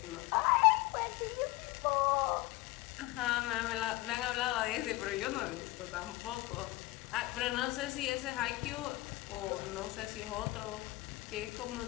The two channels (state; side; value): quieter; right; 20.0 dB